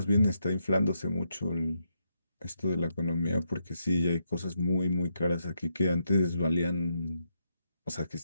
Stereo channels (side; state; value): both; inverted; correlation -0.81